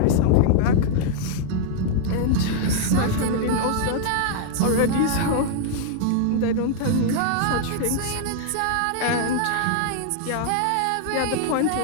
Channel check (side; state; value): both; different; correlation 0.00